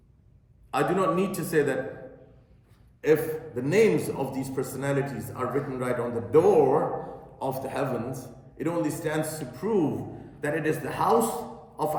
I do not need to say that if the names of these personalities are written right on the door of the heavens, it only stands to prove that it is the house of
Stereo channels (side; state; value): both; identical; correlation 1.00